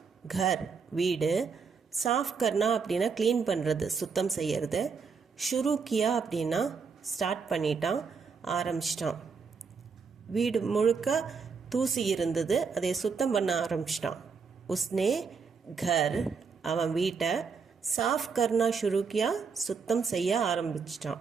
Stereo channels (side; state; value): left; quieter; 5.5 dB